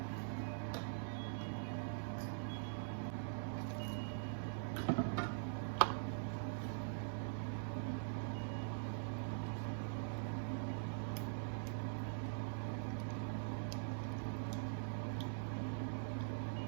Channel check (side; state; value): left; silent; digital silence